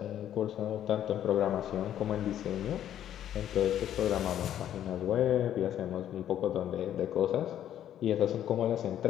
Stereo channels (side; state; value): right; quieter; 10.9 dB